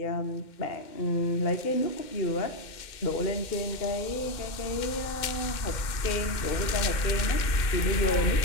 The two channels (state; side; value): late; right; 2.1 ms